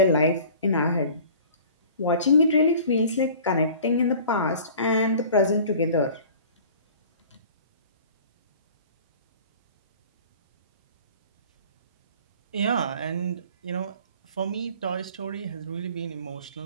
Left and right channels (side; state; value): both; inverted; correlation -0.45